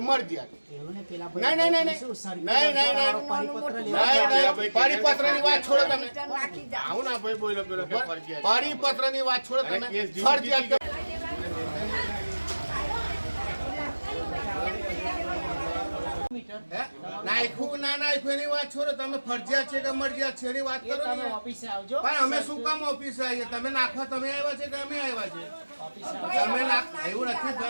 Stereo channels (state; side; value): inverted; both; correlation -1.00